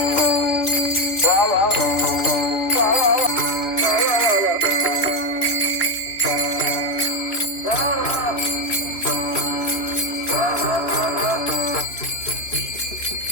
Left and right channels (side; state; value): right; late; 3.0 ms